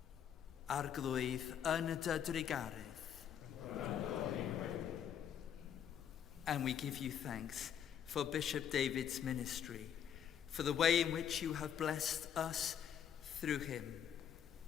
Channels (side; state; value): right; quieter; 9.0 dB